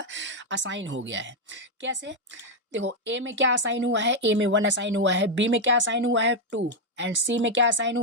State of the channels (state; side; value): normal; both; correlation 0.02